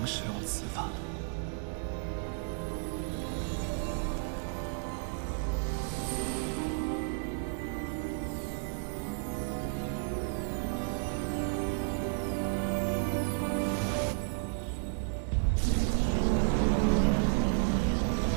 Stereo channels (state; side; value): silent; left; 56 dB below the other